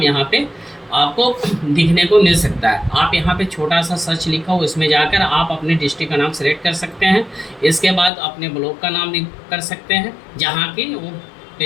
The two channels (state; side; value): drops out; right; at 8.1 s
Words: यहाँ पे आपको दिखने को मिल सकता है। आप यहाँ पे छोटा सा सर्च लिखा हो, इसमें जाकर आप अपने डिस्ट्रिक्ट का नाम सेलेक्ट कर सकते हैं। इसके बाद अपने ब्लॉक का नाम कर सकते हैं जहाँ की वो